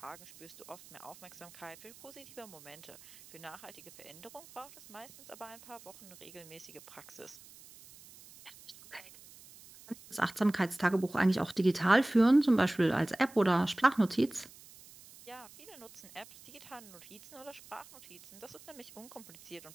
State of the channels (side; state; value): right; noise; hiss, 20 dB below the sound